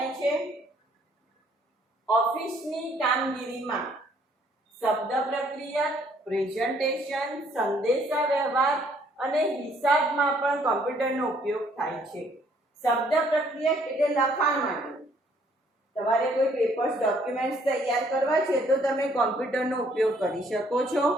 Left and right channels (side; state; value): both; normal; correlation 0.64